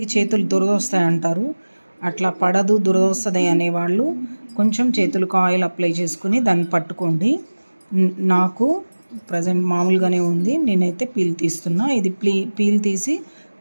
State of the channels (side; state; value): both; inverted; correlation -1.00